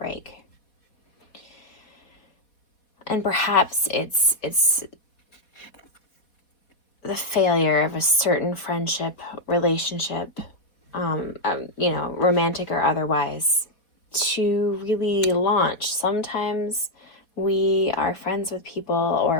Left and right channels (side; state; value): right; late; 4.2 ms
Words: And perhaps it's the failure of a certain friendship, relationship, romantic or otherwise, to really launch. Sometimes we are friends with people,